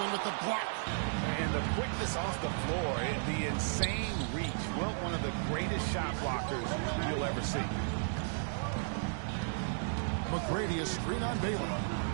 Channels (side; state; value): left; silent; digital silence